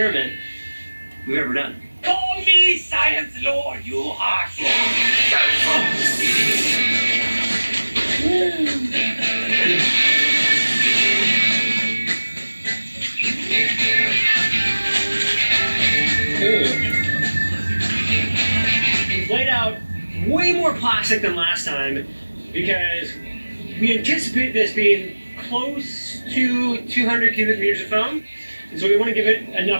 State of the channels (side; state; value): both; inverted; correlation -1.00